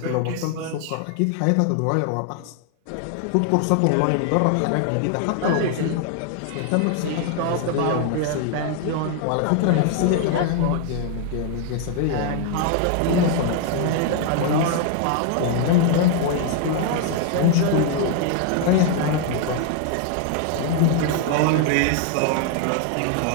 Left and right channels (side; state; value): both; different; correlation 0.00